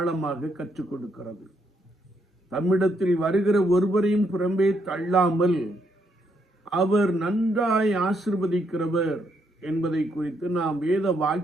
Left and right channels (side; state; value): both; normal; correlation 0.76